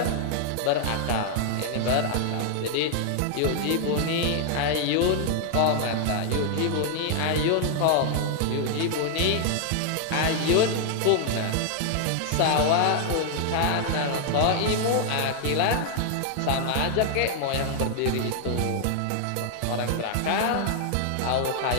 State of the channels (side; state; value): both; different; correlation 0.00